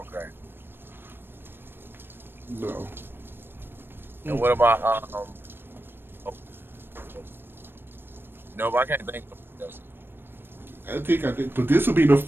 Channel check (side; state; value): left; late; 0.10 ms